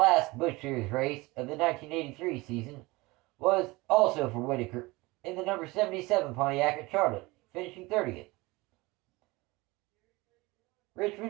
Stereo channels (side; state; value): left; quieter; 22.4 dB